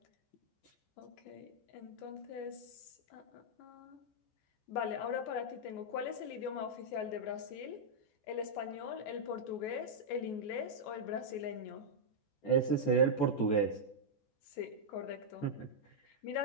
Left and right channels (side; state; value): right; late; 14 ms